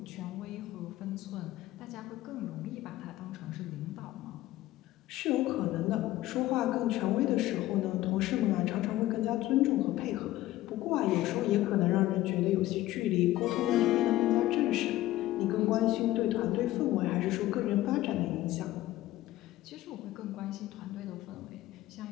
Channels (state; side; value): quieter; right; 15.7 dB